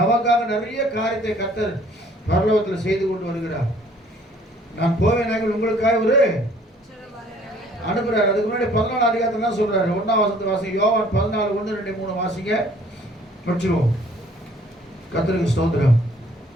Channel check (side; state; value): both; normal; correlation 0.57